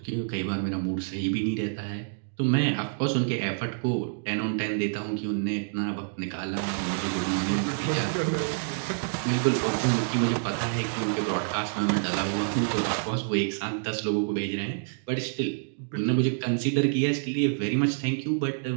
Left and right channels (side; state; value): left; silent; digital silence